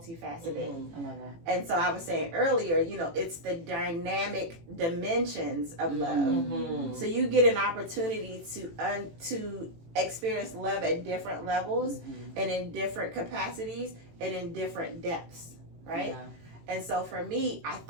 I love that. And so I was saying earlier, it's the dynamic dimensions of love. So you get an opportunity to experience love at different levels and in different capacities and in different depths, right? And so for me, I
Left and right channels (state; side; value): late; left; 18 ms